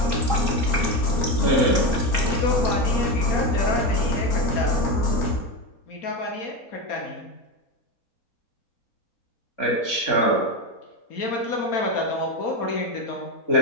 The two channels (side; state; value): right; late; 3.8 ms